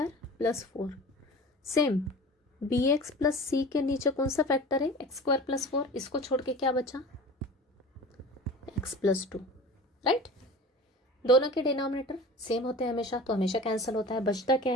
plus 4। Same b x plus c के नीचे कौन सा फैक्टर है, एक्स स्क्वायर प्लस 4, इसको छोड़ के क्या बचा, एक्स प्लस टू, राइट। दोनों के डिनोमिनेटर सेम होते हैं हमेशा, तो हमेशा कैंसिल होता है। बचता क्या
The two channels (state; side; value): normal; both; correlation 0.37